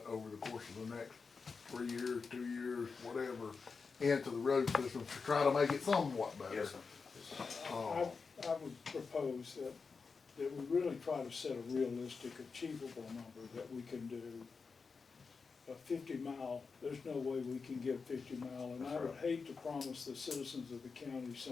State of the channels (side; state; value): right; quieter; 4.9 dB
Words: over the course of the next 3 years, 2 years, whatever, into the road system to try to make it somewhat better. Yes, sir. I would propose that we really try to set a realistic, achievable number that we can do. A 50-mile, there's no way we can give 50-mile, and I would hate to promise the citizens of the county